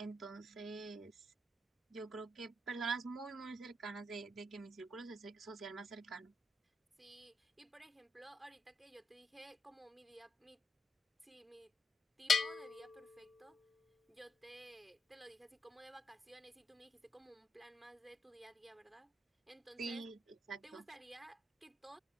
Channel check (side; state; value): both; normal; correlation 0.81